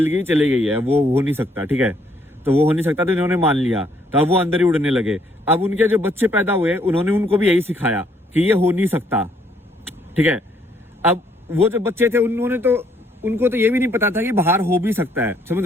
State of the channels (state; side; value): normal; both; correlation 0.68